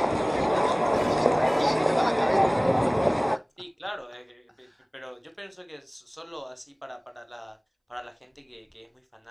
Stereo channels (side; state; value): both; identical; correlation 1.00